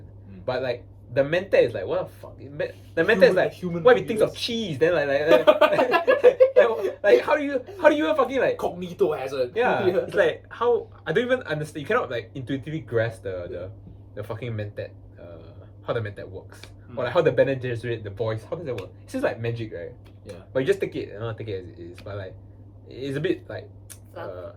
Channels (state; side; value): identical; both; correlation 1.00